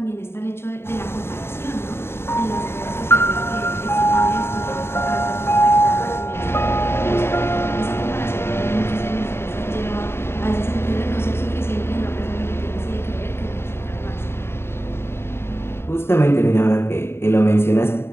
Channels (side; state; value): right; late; 0.12 ms